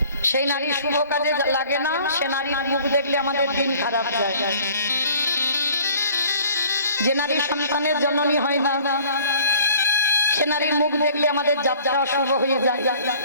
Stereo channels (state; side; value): inverted; both; correlation -0.52